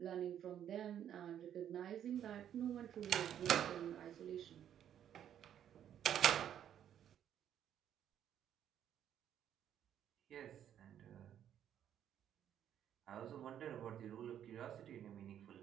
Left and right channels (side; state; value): left; quieter; 10.0 dB